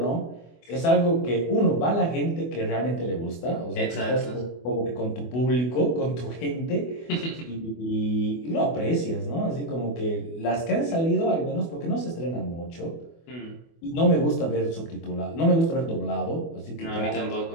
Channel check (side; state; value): right; late; 24 ms